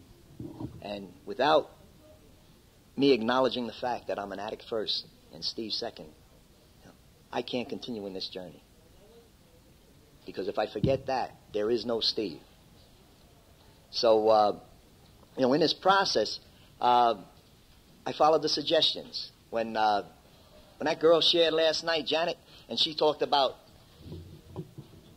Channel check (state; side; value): identical; both; correlation 1.00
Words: And without me acknowledging the fact that I'm an addict first and Steve second, I can't continue in this journey. Because if I forget that, there is no Steve. So, in this process, I followed the suggestions. When that girl shared last night, Janet, and she talked about